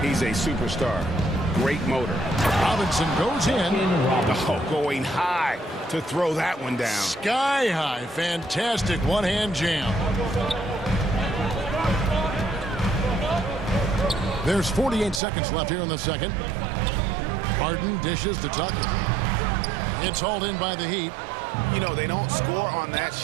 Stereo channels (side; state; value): left; drops out; at 15.2 s